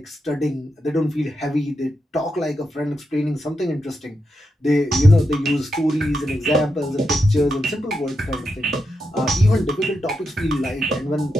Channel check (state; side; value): normal; both; correlation 0.85